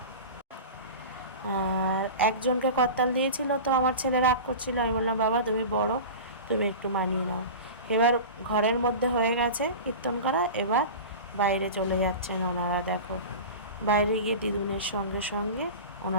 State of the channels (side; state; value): both; inverted; correlation -0.31